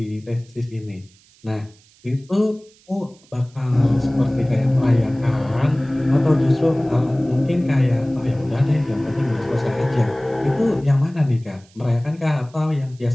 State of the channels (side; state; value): right; noise; hiss, 29 dB below the sound